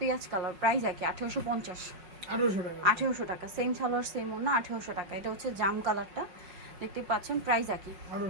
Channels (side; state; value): left; late; 5.5 ms